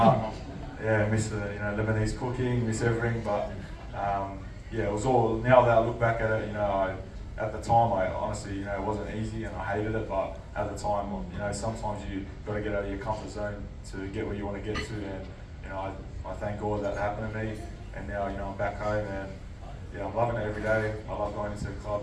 yeah, I miss the Lebanese cooking, miss everything. But it was all. Now that I look back at it, at the time, I honestly, it wasn't easy and I hated it. But at the time, sometimes you got to get out of your comfort zone to get where you want to get to. And I thank God that happened to me. And now, I'm back home and. Yeah, I'm loving it every day. I love going into the club.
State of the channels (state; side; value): identical; both; correlation 1.00